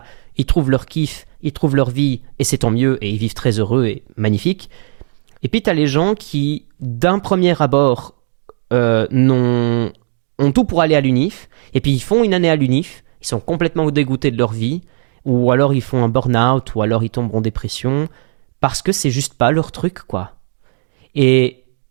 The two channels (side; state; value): left; silent; 60 dB below the other